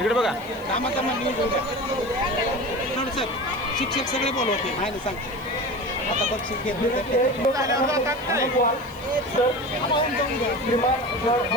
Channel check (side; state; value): left; noise; hiss, 23 dB below the sound